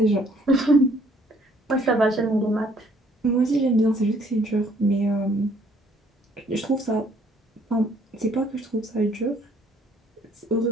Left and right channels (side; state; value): both; normal; correlation 0.63